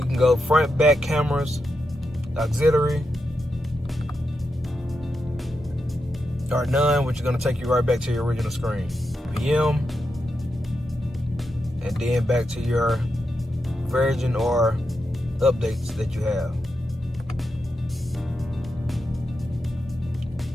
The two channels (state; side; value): normal; both; correlation 0.86